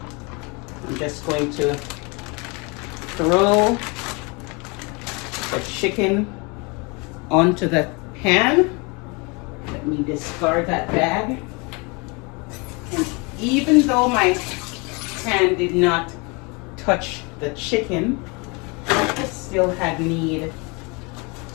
I'm just going to throw the chicken onto the pan. Let me discard that bag. And even though my hand did not touch the chicken, I still had need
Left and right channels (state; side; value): quieter; right; 29.5 dB